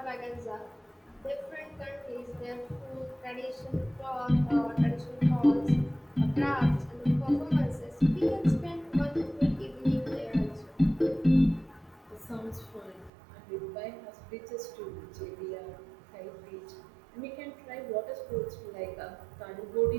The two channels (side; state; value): left; drops out; at 13.1 s